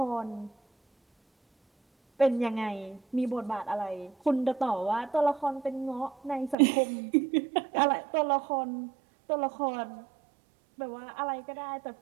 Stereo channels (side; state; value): left; drops out; at 6.6 s